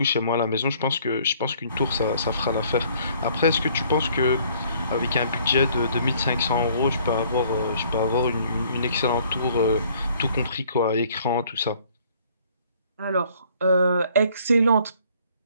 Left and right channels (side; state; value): both; inverted; correlation -0.60